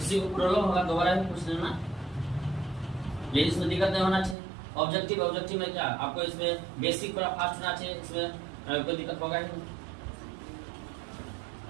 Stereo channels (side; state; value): left; drops out; at 4.4 s